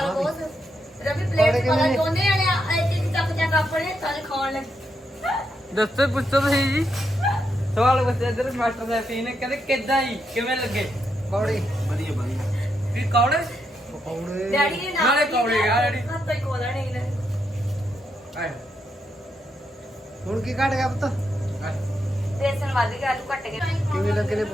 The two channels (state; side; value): normal; both; correlation 0.81